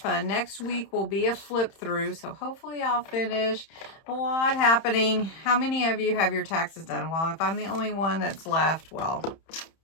Next week will be a flip through, so hopefully I'll finish. A lot happening. How many of you have your taxes done? Well, if I'm the only one that's left, well,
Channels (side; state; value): right; late; 31 ms